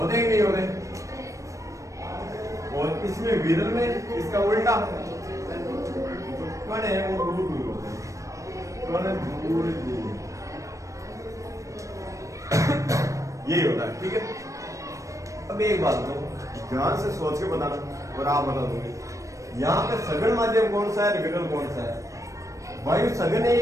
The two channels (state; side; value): late; left; 0.15 ms